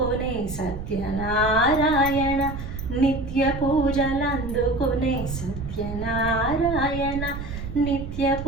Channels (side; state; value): right; noise; rumble, 8 dB below the sound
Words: సత్యనారాయణ. నిత్య పూజలందుకొనే సత్యనారాయణ. నిత్య